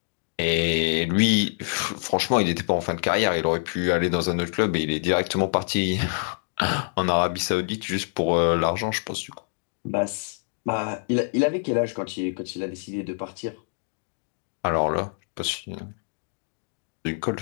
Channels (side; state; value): right; silent; digital silence